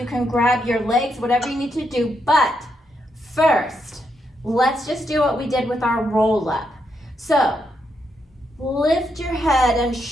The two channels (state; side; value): normal; both; correlation 0.80